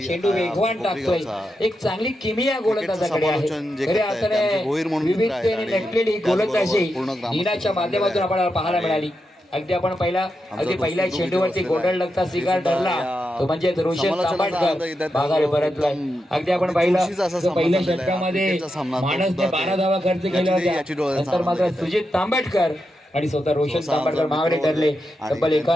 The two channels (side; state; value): both; normal; correlation 0.87